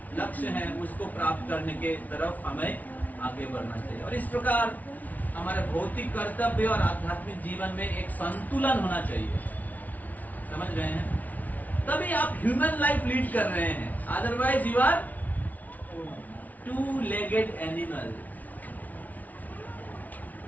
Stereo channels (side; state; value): right; late; 0.075 ms